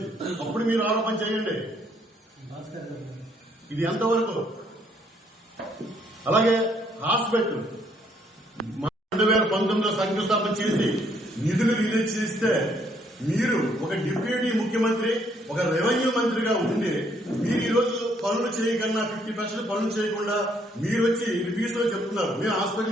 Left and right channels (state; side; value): normal; both; correlation 0.68